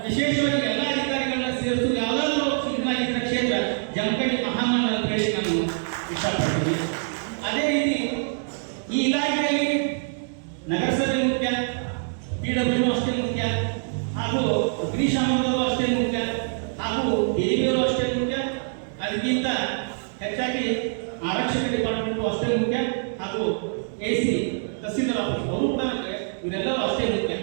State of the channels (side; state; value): left; silent; digital silence